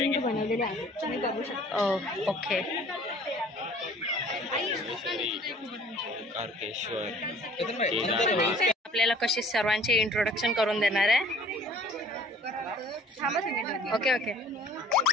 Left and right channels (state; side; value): normal; both; correlation 0.52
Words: बनवलेले आहे, तुम्ही बघू शकता. ओके. आपल्याला कशी सर्वांचे इंट्रोडक्शन करून देणार आहे. ओके ओके,